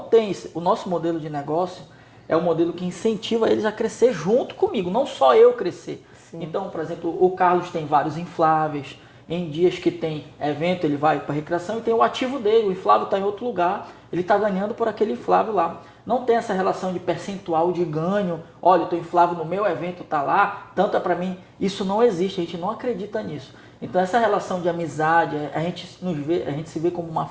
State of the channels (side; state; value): both; identical; correlation 1.00